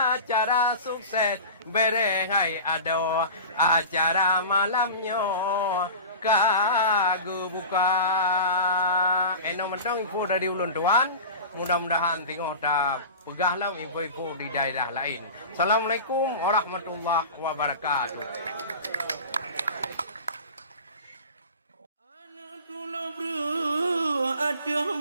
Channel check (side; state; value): both; inverted; correlation -0.33